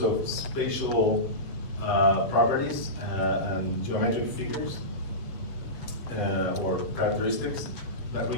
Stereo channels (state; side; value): late; right; 7.2 ms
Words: of spatial properties and geometric figures or characteristics that